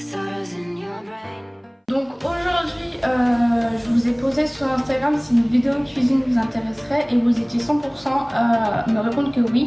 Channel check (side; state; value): both; identical; correlation 1.00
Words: sorrows in your brain. Donc aujourd'hui, je vous ai posé sur Instagram si une vidéo cuisine vous intéresserait et vous étiez 100% à me répondre que